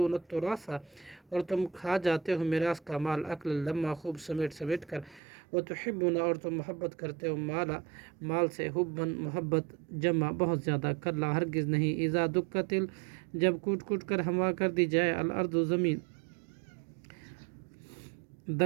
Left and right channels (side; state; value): left; drops out; at 5.2 s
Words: التراث اور تم کھا جاتے ہو میراث کا مال اکل لما خوب سمیٹ سمیٹ کر وتحبون اور تم محبت کرتے ہو مال سے حبن محبت جمع بہت زیادہ کلا ہرگز نہیں اذا دکت جب کوٹ کوٹ کر ہوا کر دی جائے الارض زمین